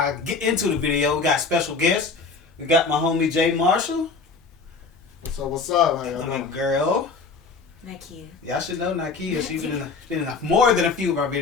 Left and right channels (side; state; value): right; quieter; 4.4 dB